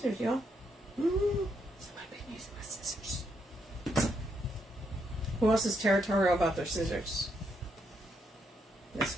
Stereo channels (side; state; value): both; normal; correlation 0.78